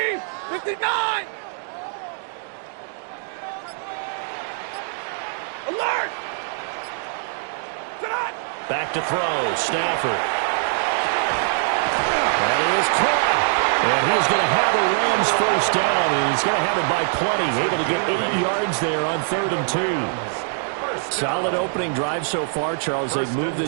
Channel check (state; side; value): silent; left; digital silence